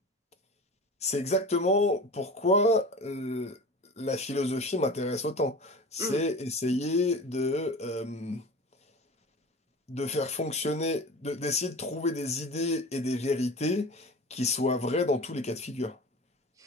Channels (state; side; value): normal; both; correlation 0.35